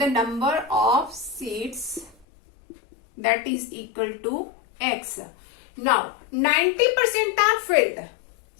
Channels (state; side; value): drops out; right; at 2.2 s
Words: that is equal to x. Now 90% are filled.